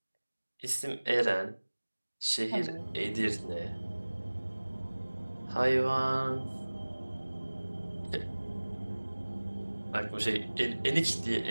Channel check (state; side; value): inverted; both; correlation -1.00